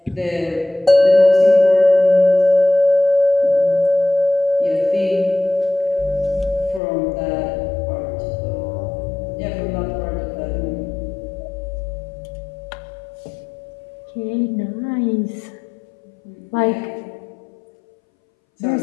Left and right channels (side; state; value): right; drops out; at 6.8 s